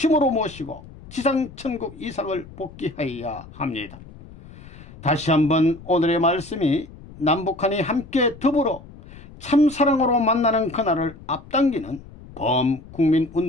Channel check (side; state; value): left; noise; rumble, 19 dB below the sound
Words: 모시고 지상천국 이상을 복귀하여야 합니다. 다시 한번 오늘의 말씀이 남북한이 함께 더불어 참사랑으로 만나는 그날을 앞당기는